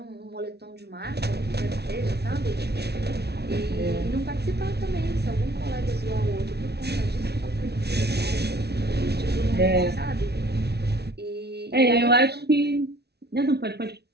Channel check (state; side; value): late; left; 0.48 ms